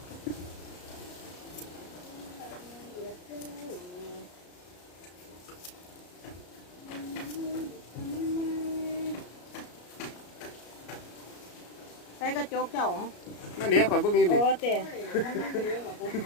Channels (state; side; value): late; right; 33 ms